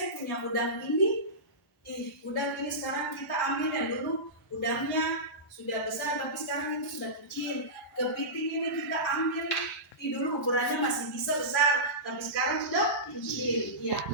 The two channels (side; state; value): both; normal; correlation -0.18